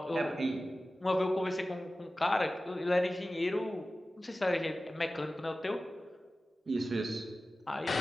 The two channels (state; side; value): normal; both; correlation 0.95